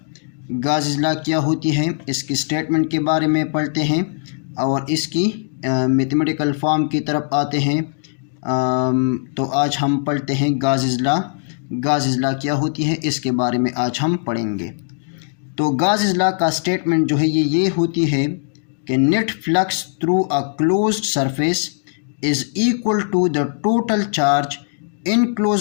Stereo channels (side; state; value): right; silent; digital silence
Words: गाज़िज़ला क्या होती है, इसकी स्टेटमेंट के बारे में पढ़ते हैं और इसकी मैथमेटिकल फॉर्म की तरफ आते हैं। तो आज हम पढ़ते हैं गाज़िज़ला। गाज़िज़ला क्या होती है इसके बारे में आज हम पढ़ेंगे। तो गाज़िज़ला का स्टेटमेंट जो है ये होती है कि net flux through a closed surface is equal to the total charge